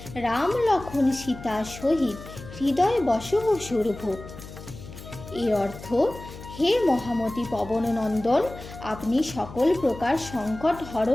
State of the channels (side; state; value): left; noise; hum, 14 dB below the sound